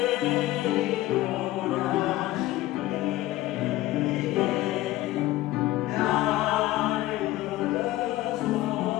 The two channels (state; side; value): quieter; right; 16.3 dB